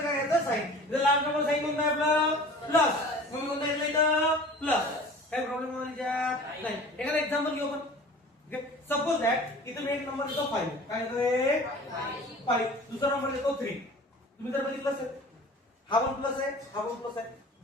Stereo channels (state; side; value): normal; both; correlation 0.43